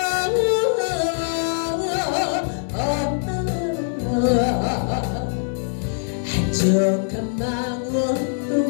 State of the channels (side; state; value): right; silent; digital silence